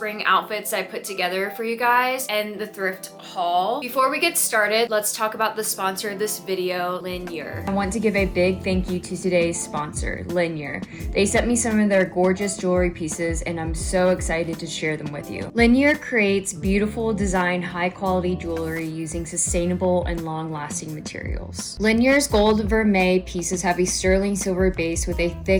outfits I put together for you guys and the thrift haul. Before we get started, let's talk about the sponsor of this video, Linjer. I want to give a big thank you to today's sponsor, Linjer. They sent me some of their gorgeous jewelry pieces and I'm so excited to share them with you. Linjer creates beautiful design, high quality jewelry using sustainable and long-lasting materials. Linjer's gold vermeil pieces have a sterling silver base with a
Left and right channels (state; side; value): identical; both; correlation 1.00